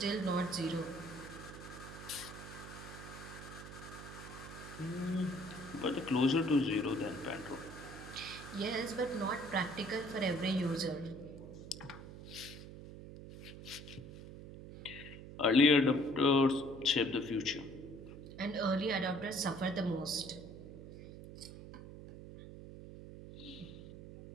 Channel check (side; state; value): right; noise; hum, 13 dB below the sound